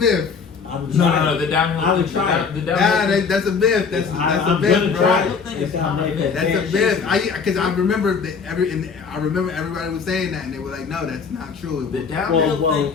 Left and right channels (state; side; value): quieter; right; 5.6 dB